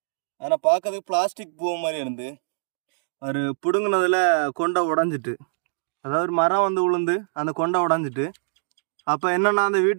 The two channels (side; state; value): left; silent; digital silence